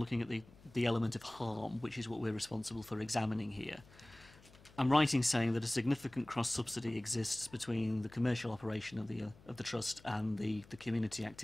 at the element of harm, which is what we're responsible for examining here. I'm right in saying that a significant cross-subsidy exists between the commercial operation of the Trust and the community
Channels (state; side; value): noise; left; hum, 24 dB below the sound